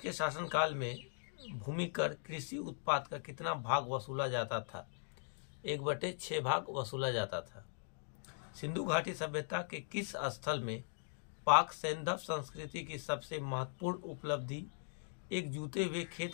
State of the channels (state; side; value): silent; right; digital silence